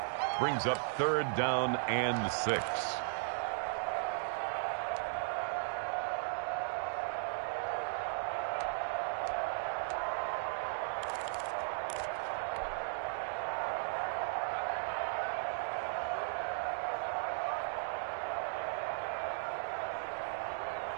Brings up 3rd down and 6.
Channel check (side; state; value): left; silent; digital silence